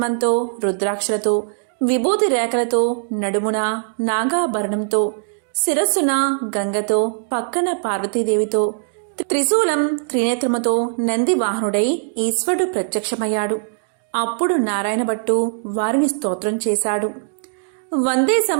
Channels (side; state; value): left; silent; digital silence